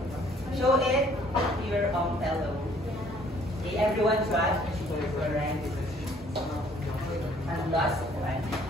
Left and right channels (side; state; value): both; normal; correlation 0.59